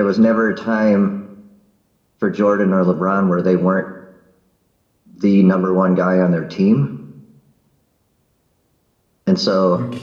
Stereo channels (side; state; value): both; identical; correlation 1.00